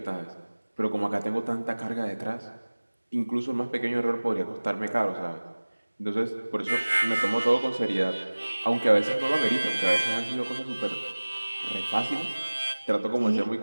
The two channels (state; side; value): inverted; both; correlation -1.00